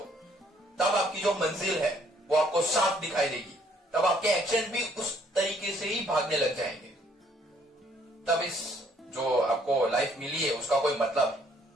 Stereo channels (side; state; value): both; normal; correlation 0.65